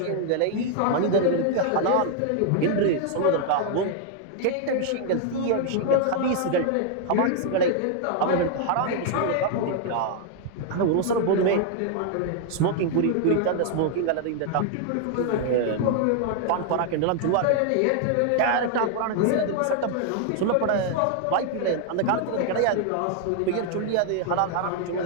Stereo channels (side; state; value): both; different; correlation 0.00